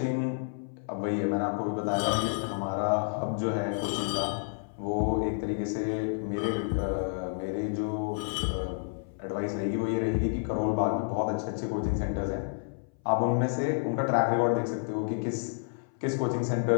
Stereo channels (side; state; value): right; silent; 58 dB below the other